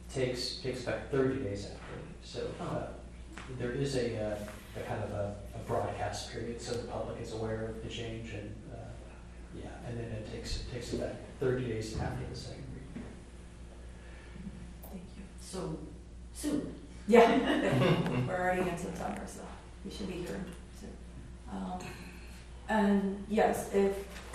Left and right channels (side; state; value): both; identical; correlation 1.00